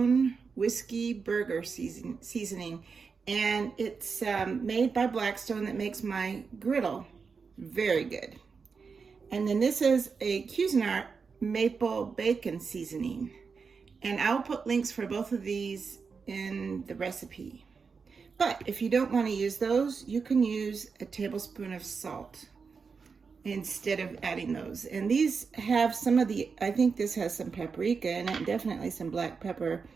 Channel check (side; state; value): left; quieter; 5.3 dB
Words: whiskey burger seasoning, and it's made by Blackstone that makes my griddle very good. And then this is a Cuisinart Maple Bacon Seasoning, and I'll put links for both of these in the recipe. But if you don't want to use those, you can use a tablespoon of salt instead of adding those. And these have some of the, I think this has some paprika in it, definitely some black pepper.